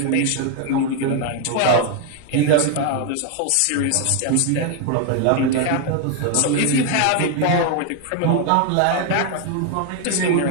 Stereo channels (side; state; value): both; different; correlation 0.01